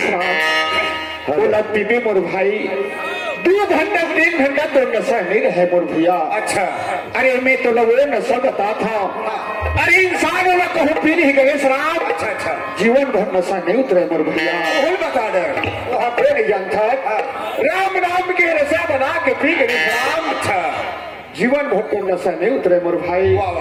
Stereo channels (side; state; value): both; identical; correlation 1.00